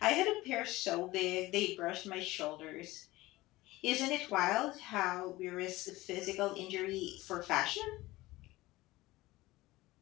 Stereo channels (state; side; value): quieter; right; 18.9 dB